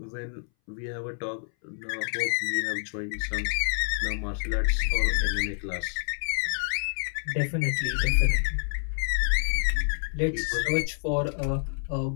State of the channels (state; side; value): silent; right; 59 dB below the other